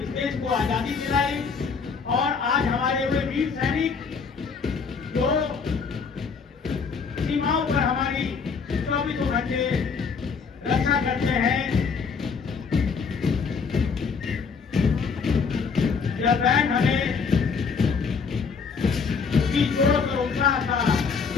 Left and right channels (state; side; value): quieter; right; 5.5 dB